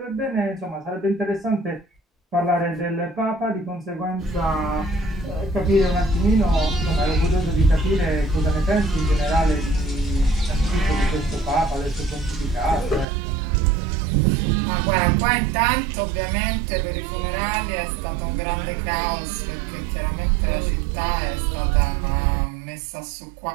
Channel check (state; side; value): drops out; left; at 13.1 s